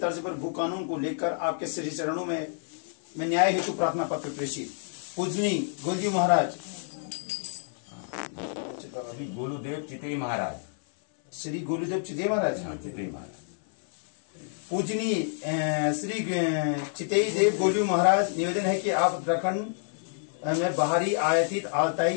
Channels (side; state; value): right; silent; 59 dB below the other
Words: पर भू कानून को लेकर आपके श्री चरणों में न्याय हेतु प्रार्थना पत्र प्रेषित। पूजनी गोलजी महाराज श्री गोलूदेव चितई महाराज, श्री गोलूदेव चितई महाराज, चितई महाराज पूजनी श्री चितई देव गोलू महाराज, निवेदन है कि आप उत्तराखंड में बाहरी आयातित